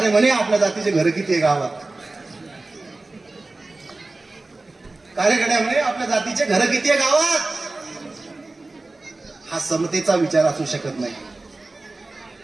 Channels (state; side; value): quieter; left; 3.2 dB